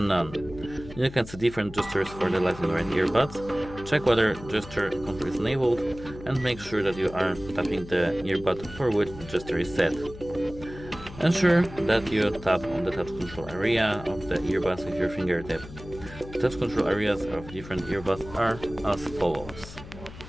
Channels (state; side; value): noise; left; hum, 15 dB below the sound